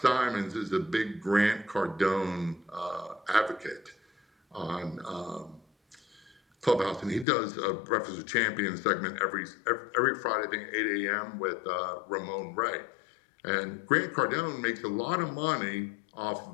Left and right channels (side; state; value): right; drops out; at 7.2 s